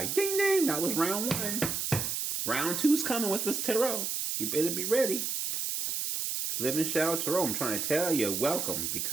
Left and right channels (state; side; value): noise; right; hiss, 1 dB below the sound